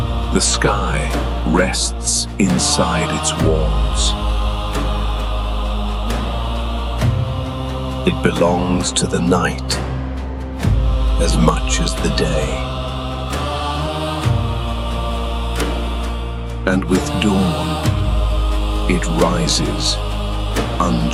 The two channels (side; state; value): both; identical; correlation 1.00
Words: The sky rests inside its walls. It belongs to the night as much as the day. And with dawn, it rises